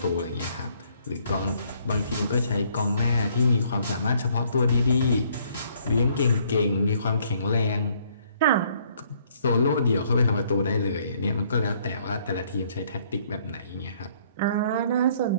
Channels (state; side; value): inverted; both; correlation -0.65